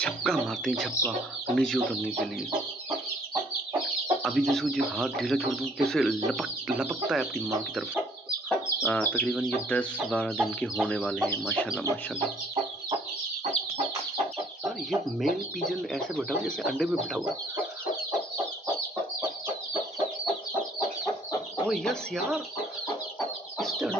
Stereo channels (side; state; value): both; normal; correlation 0.60